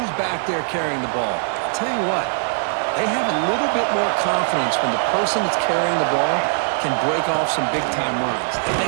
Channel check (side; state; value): left; silent; digital silence